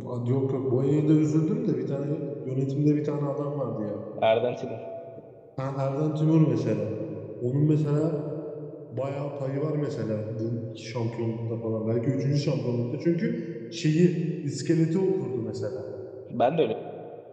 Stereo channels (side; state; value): both; identical; correlation 1.00